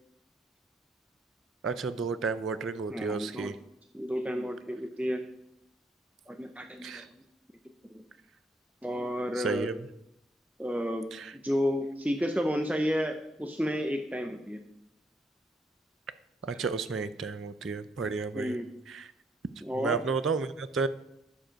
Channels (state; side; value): normal; both; correlation 0.72